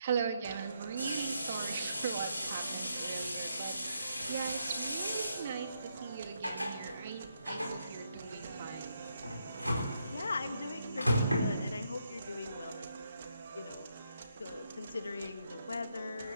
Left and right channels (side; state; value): both; inverted; correlation -0.79